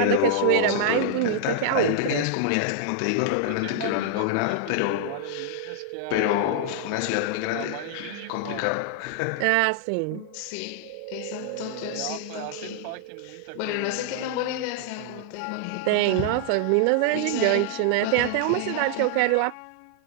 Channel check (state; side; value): different; both; correlation -0.01